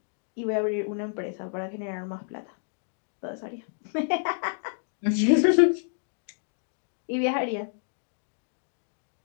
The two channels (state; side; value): silent; right; digital silence